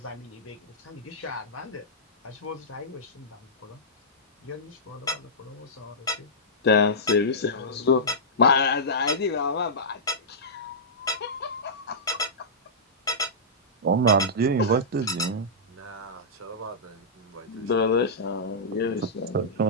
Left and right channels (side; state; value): both; normal; correlation -0.14